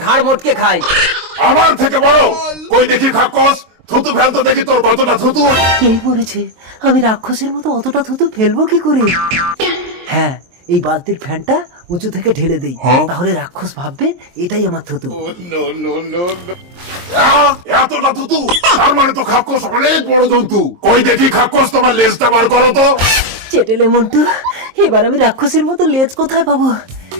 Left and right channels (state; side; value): late; left; 23 ms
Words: ঘাড় মোটকে খাই। আমার থেকে বড়? কই দেখি খাক্কস, থুতু ফেলতো দেখি তোর কতটা থুতু। এই পড়েছে, আমি রাক্ষসের মতো অতটা থুতু ফেলবো কি করে? হ্যাঁ, এই বালতির ফ্যানটা উঁচু থেকে ঢেলে দেই, তাহলে রাক্ষস ভাববে এটাই আমার থুতু। এতটা থুতু? তার মানে তো খাক্কস অনেক বড় জন্তু। কই দেখি খাক্কস, তোমার লেজটা বার করো তো। চেটেলে মন্টু, এবার আমি রাক্ষসের মতো লেজ কোথায় পাবো?